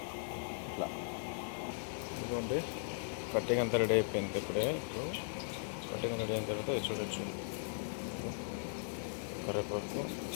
ఇట్లా ఇదిగోండి, కట్టింగ్ అంతా రెడీ అయిపోయింది. ఇప్పుడు కట్టింగ్ రెడీ అయిన తర్వాత ఇది చూడొచ్చు. కరివేపాకు,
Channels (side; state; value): right; silent; 52 dB below the other